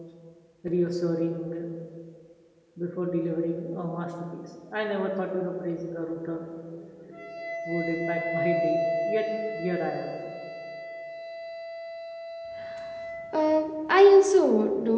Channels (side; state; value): both; identical; correlation 1.00